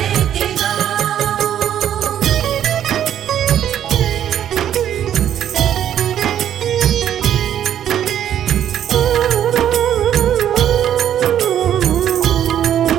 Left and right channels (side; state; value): left; quieter; 10.4 dB